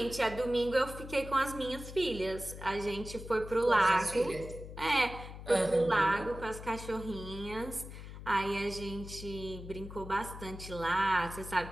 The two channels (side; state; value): left; noise; hum, 12 dB below the sound